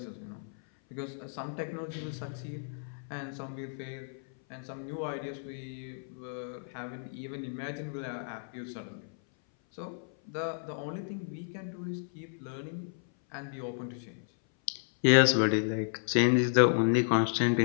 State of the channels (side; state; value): right; silent; 56 dB below the other